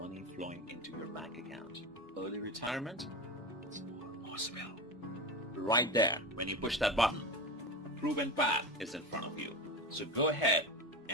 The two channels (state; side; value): normal; both; correlation 0.24